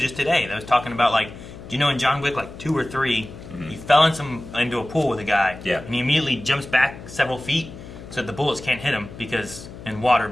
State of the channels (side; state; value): left; noise; hum, 14 dB below the sound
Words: just today, that was talking about like, do you know in John Wick like 2 or 3, he fell into a pool with a guy. Yeah. And he immediately jumps back several feet so that the bullets can't hit him because in water